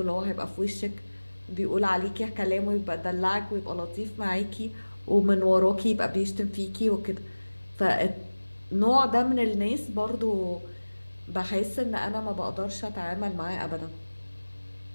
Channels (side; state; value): both; inverted; correlation -1.00